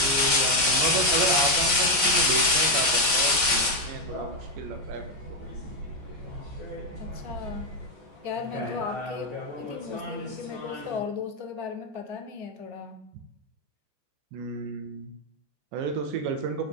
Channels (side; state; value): left; late; 14 ms